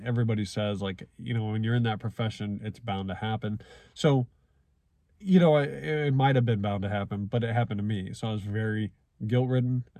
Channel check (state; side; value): identical; both; correlation 1.00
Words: everybody says, like, you know, when you're in that profession, it's bound to happen. So, you know, it might have been bound to happen, but it happened to me. So I was very guilt-ridden.